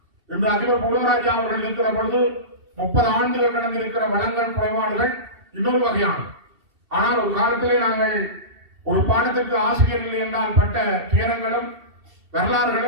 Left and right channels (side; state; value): left; late; 2.7 ms